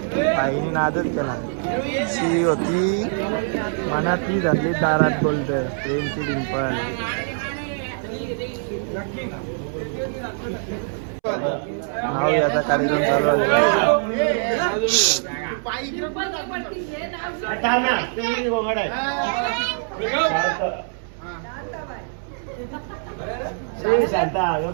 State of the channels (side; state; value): left; silent; 63 dB below the other